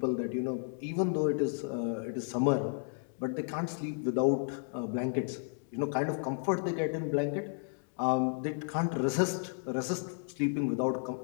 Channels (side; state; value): right; silent; digital silence